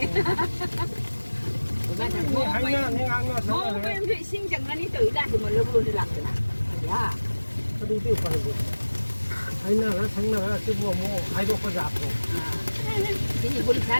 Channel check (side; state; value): both; inverted; correlation -1.00